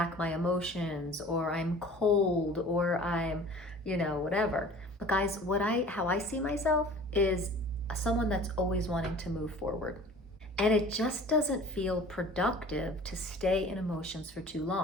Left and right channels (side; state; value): both; normal; correlation 0.45